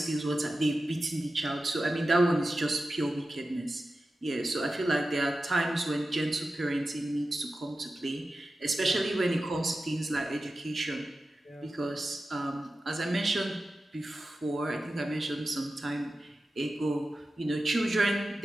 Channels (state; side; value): normal; both; correlation 0.93